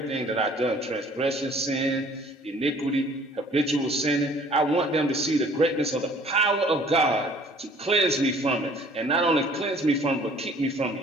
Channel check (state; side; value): normal; both; correlation 0.54